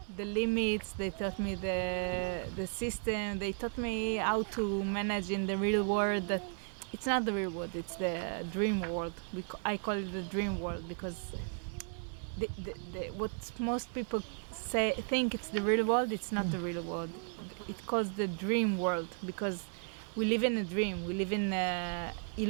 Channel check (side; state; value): left; silent; 54 dB below the other